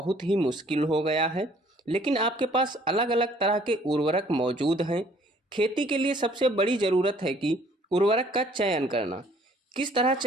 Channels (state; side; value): normal; both; correlation 0.59